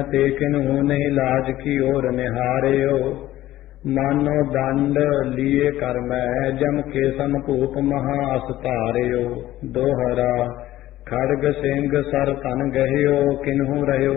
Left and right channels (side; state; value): right; quieter; 14.9 dB